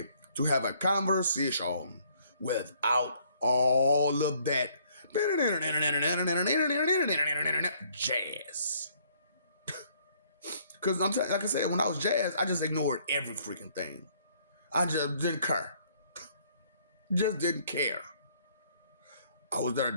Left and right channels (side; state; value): both; inverted; correlation -0.64